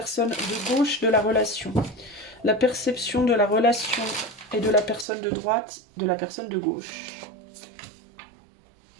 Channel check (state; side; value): drops out; left; at 5.1 s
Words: de gauche de la relation. La perception de la relation et de la personne de droite, de la personne de gauche.